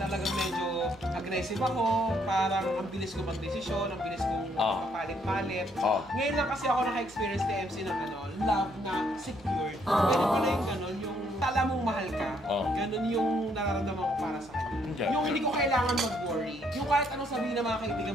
medyo aggressive ako. Parang ang bilis ko magdesisyon, ang bilis kong palit-palit. Ngayon lang kasi ako naka-experience ni MC ng love na secured. Pwede pala yung ganun, yung tala mong mahal ka. Ganun yung nararamdaman ko para sa kanya. Yung hindi ko kailangan mag-worry. Yung kahit anong sabihin ng mga kaibigan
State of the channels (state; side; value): normal; both; correlation 0.70